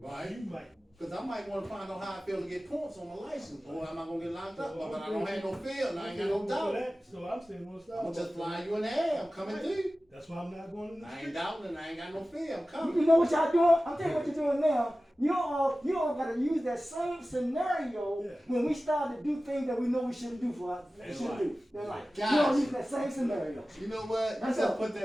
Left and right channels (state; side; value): normal; both; correlation 0.96